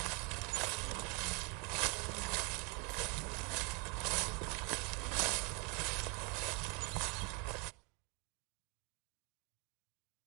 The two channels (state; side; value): quieter; left; 33.1 dB